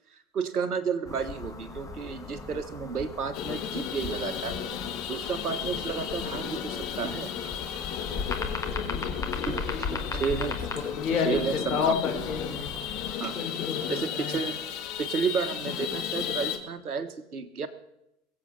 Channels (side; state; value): both; normal; correlation 0.40